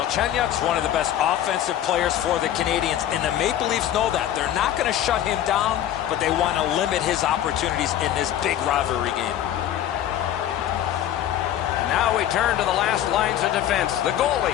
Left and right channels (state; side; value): quieter; right; 11.4 dB